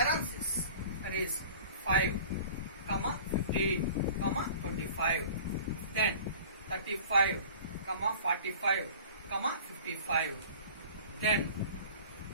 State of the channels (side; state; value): both; inverted; correlation -0.43